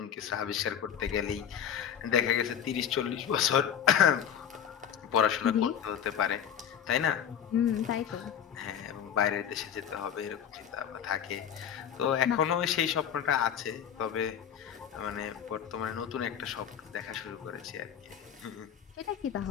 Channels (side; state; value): right; quieter; 8.9 dB